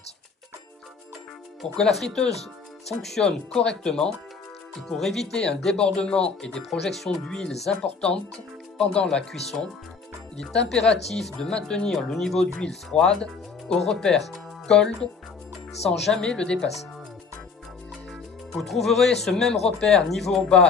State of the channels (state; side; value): quieter; right; 5.1 dB